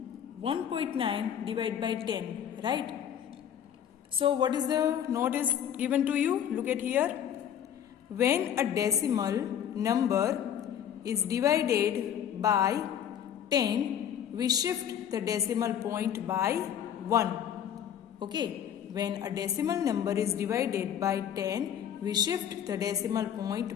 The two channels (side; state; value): right; quieter; 9.4 dB